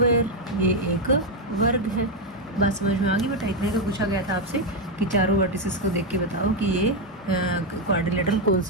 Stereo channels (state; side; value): normal; both; correlation 0.04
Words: ये एक वर्ग है। बात समझ में आ गई बेटा। इतने का पूछा गया था आपसे कि चारों वर्टिसेस को देख के बताओ कि ये क्वाड्रिलेटरल कौन